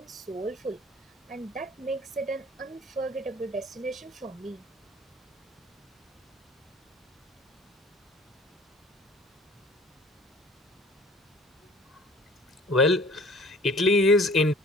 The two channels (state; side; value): normal; both; correlation 0.50